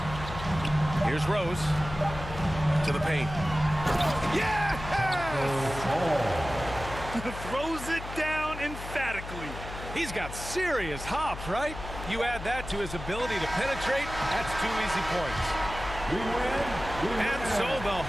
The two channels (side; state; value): left; noise; hum, 10 dB below the sound